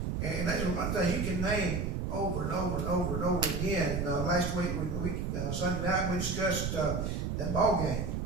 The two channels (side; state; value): right; noise; rumble, 1 dB below the sound